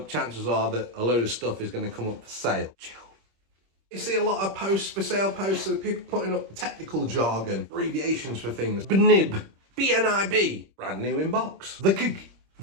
Chances are that a load of stuff is going to come up for sale. Chill. You see a lot of posts, for sale posts, of people putting up technical jargon, abbreviations for things. BNIB, BNIB, brand new in box. The gig,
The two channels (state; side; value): late; left; 26 ms